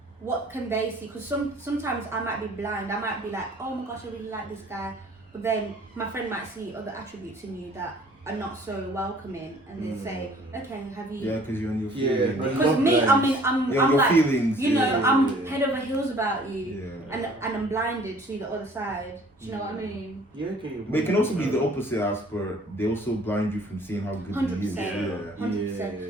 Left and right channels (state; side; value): normal; both; correlation 0.54